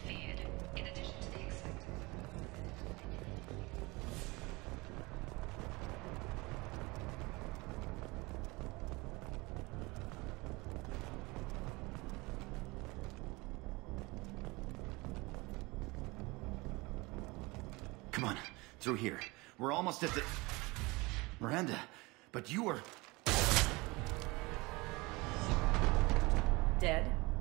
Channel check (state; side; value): quieter; left; 24.1 dB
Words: feared. In addition to the expected... Come on, through here. We're almost at the... Miranda, but you were... Dead?